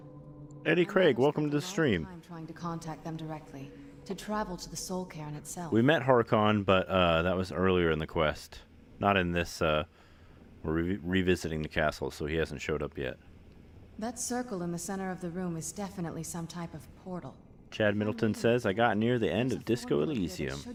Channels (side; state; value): both; identical; correlation 1.00